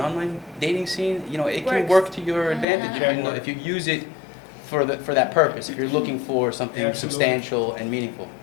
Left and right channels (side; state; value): right; drops out; at 2.7 s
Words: dating scene, it can work to your advantage if you use it for that purpose, if you're looking for something substantial and meaningful.